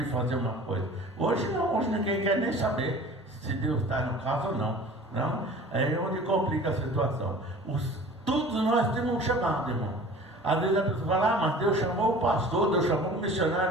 fazer uma coisa. Hoje não, hoje ninguém quer nem saber se Deus está no caso ou não. Não? É onde complica a situação. Todos nós temos um chamado, irmão. Às vezes a pessoa fala, mas Deus chamou o pastor, Deus chamou o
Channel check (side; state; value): both; normal; correlation 0.43